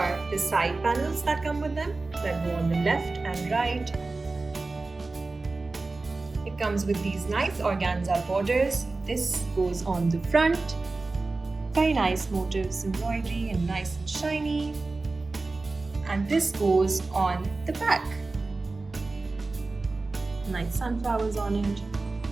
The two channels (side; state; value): left; quieter; 3.5 dB